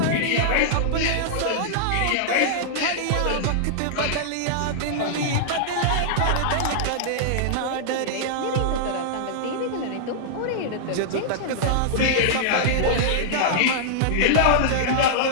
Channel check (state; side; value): different; both; correlation -0.02